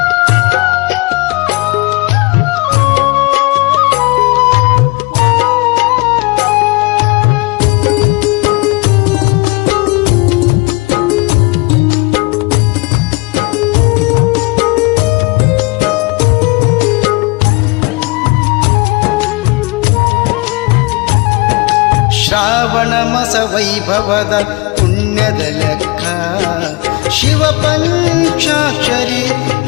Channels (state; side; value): quieter; right; 26.0 dB